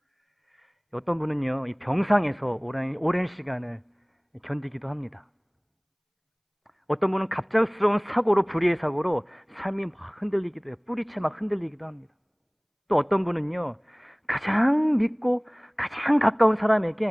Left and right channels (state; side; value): identical; both; correlation 1.00